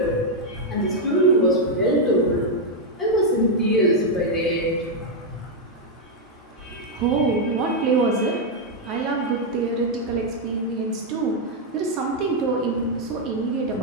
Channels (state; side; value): normal; both; correlation 0.00